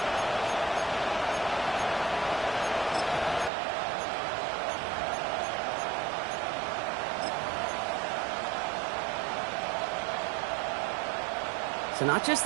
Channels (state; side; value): drops out; left; at 3.5 s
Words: So not just